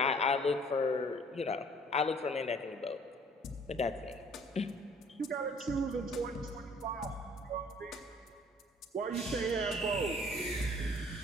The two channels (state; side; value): normal; both; correlation 0.55